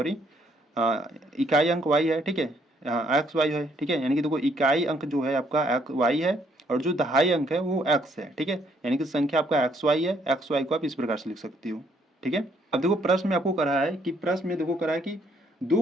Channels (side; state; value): both; normal; correlation 0.68